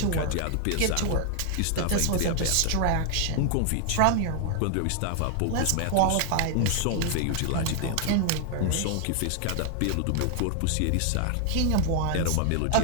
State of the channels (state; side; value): different; both; correlation 0.00